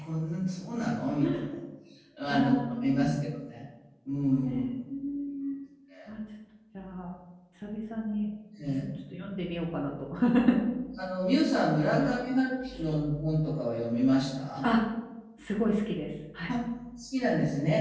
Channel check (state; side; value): identical; both; correlation 1.00